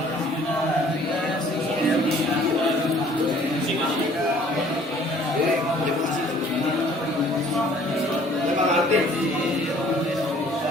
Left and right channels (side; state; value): both; normal; correlation 0.55